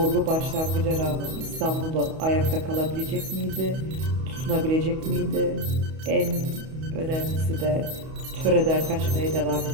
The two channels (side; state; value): left; late; 31 ms